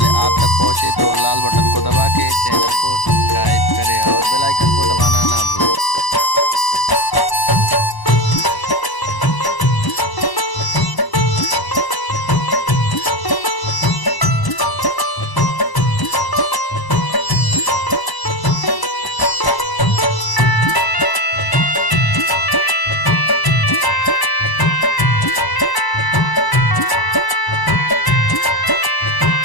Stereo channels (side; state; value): right; late; 1.0 ms